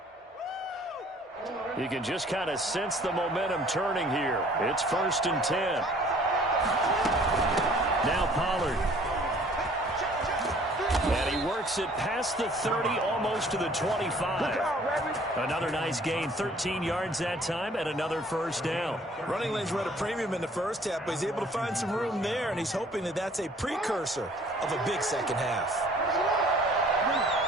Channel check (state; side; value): normal; both; correlation 0.55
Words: You can just kind of sense the momentum turning here. It's 1st and 10. Now Pollard. And he works it past the 30, almost to the 25. Another nice gain, 13 yards that time, and another first down. Running lanes were at a premium in the first half, but he's able to find some room there, and he's hoping that that's a precursor of a big second half.